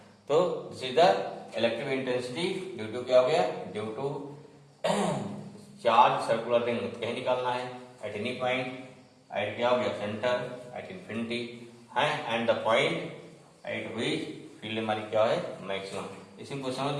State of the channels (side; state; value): both; identical; correlation 1.00